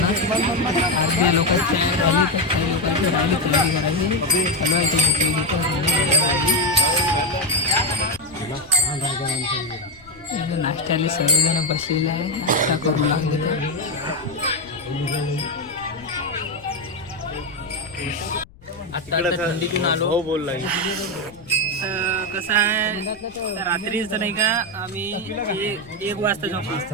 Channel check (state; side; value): noise; left; rumble, 24 dB below the sound